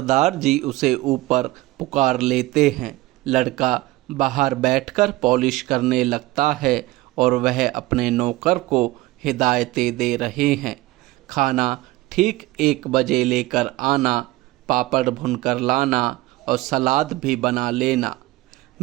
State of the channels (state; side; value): quieter; left; 18.7 dB